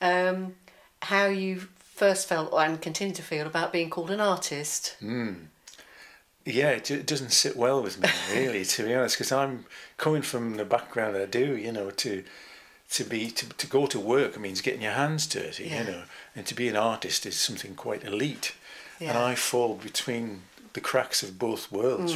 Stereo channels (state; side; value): identical; both; correlation 1.00